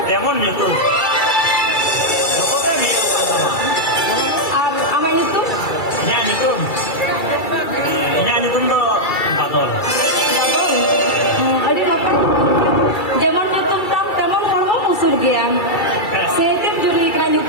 demon gitu. Pokoknya dia sama. Ama itu? Nyanyi tuh. Nyanyi tuh do badol. Bagus. Ada apa? Zaman itu teman kamu musuh dia. Setiap juri kena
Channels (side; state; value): right; late; 2.3 ms